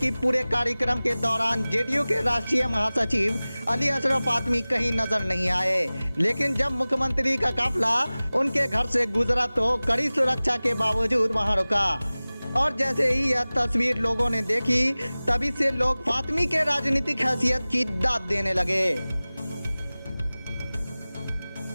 पूरे कार्यक्रम के दौरान जेडीयू के राष्ट्रीय महासचिव अली अशरफ फातमी कहीं नजर नहीं आए, लेकिन जब मुख्यमंत्री का काफिला उनके घर से गुजरा तो कड़ी सुरक्षा के बावजूद वहां रुका और जैसे ही यह तस्वीर लोगों ने देखी, तभी से लोग फातमी के राजनीतिक हैसियत की दाद देने लगे।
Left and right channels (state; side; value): inverted; both; correlation -0.99